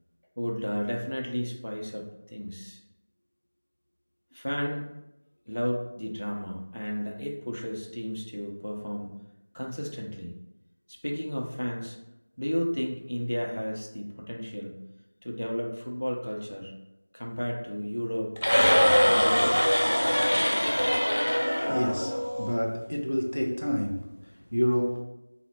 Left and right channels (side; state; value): both; inverted; correlation -1.00